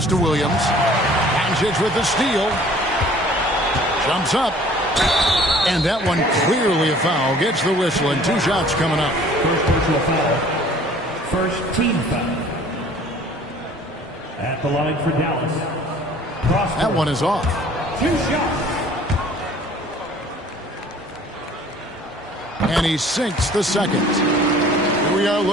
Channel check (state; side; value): normal; both; correlation 0.52